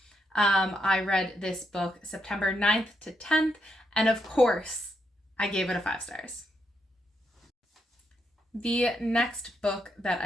I read this book September 9th to 10th, and of course, I gave it a 5 stars. The next book that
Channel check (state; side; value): normal; both; correlation 0.80